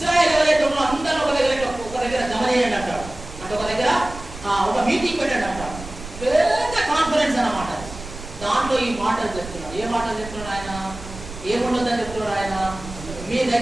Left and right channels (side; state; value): right; noise; rumble, 13 dB below the sound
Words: ఎవరైతే ఉన్నారో అందరూ ఒక దగ్గర జమ చేయండి అంటాడు. అంటే ఒక దగ్గర ఒక మీటింగ్ పెట్టండి అంటాడు. పెద్ద కాన్ఫరెన్స్ అన్నమాట. దాంట్లో ఈ మాటలు చెప్తున్నాడు. ఏ మాటలు చెప్తున్నాడు ఆయన? ఏముండదని చెప్తున్నాడు ఆయన? మీ